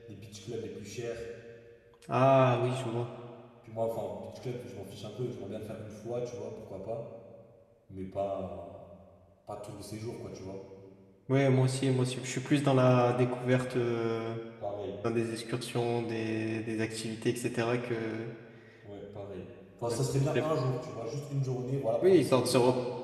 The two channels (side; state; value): both; identical; correlation 1.00